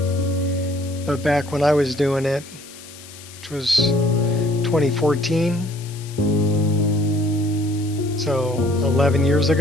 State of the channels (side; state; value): left; noise; hiss, 18 dB below the sound